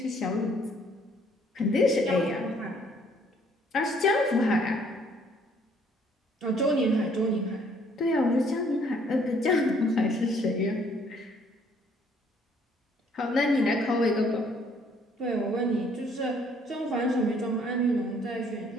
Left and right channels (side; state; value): both; normal; correlation 0.63